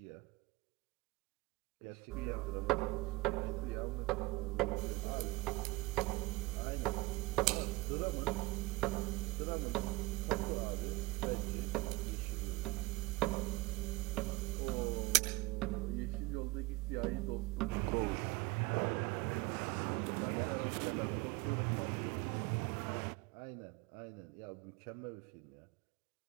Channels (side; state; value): left; quieter; 22.2 dB